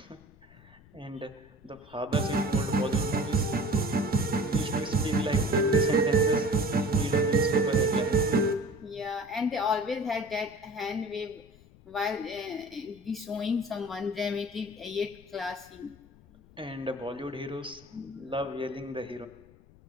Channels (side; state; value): left; noise; rumble, 25 dB below the sound